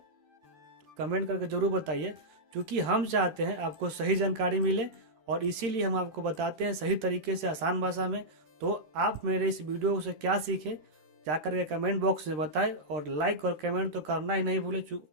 कमेंट करके ज़रूर बताइए, क्योंकि हम चाहते हैं आपको सही जानकारी मिले और इसीलिए हम आपको बताते हैं सही तरीके से, आसान भाषा में। तो आप मेरे इस वीडियो से क्या सीखे जाकर के कमेंट बॉक्स में बताएं, और लाइक और कमेंट तो करना ही नहीं भूले,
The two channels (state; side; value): late; left; 13 ms